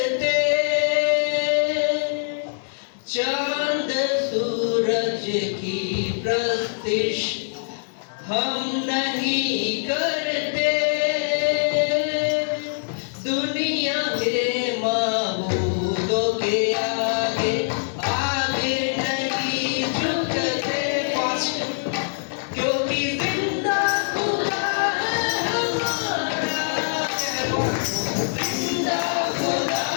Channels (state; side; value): silent; right; digital silence